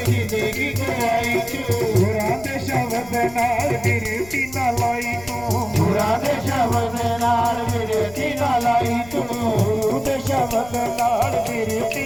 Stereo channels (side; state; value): left; noise; rumble, 19 dB below the sound